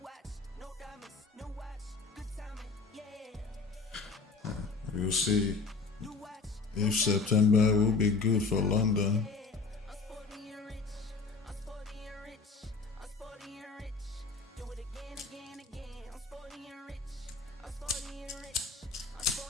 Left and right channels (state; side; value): quieter; right; 4.4 dB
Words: watch, no diamonds, no watch, good timing, yeah. We'll see. No watch, if September will be good for London. I'm sporty and rich. I'm sporty and rich. I'm sporty and rich. Do it again, again, again. I'm sporty and rich. I'm sporty and rich. I'm